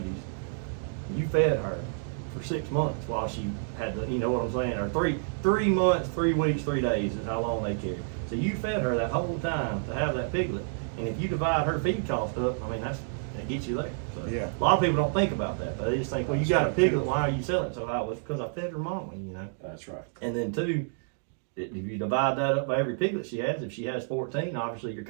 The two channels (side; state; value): left; silent; digital silence